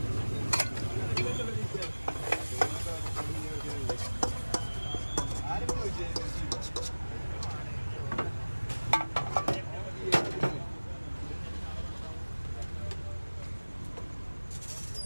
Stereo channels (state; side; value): inverted; both; correlation -1.00